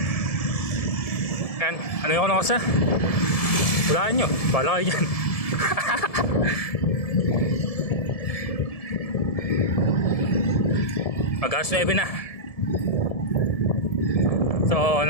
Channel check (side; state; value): right; late; 1.7 ms